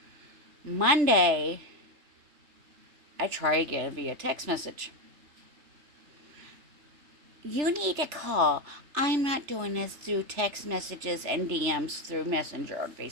Monday, I try again via text message. You need to call. I'm not doing this through text messages and DMs through Messenger on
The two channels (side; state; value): left; late; 3.3 ms